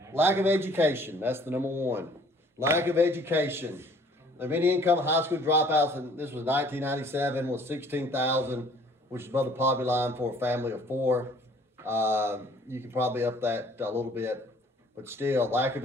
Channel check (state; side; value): normal; both; correlation 0.56